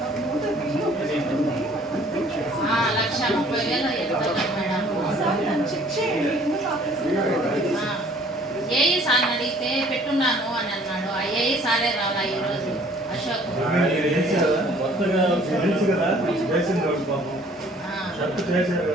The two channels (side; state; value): both; normal; correlation 0.56